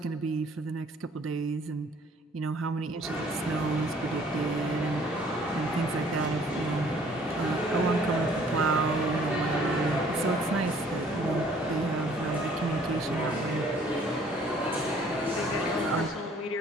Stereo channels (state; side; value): normal; both; correlation 0.58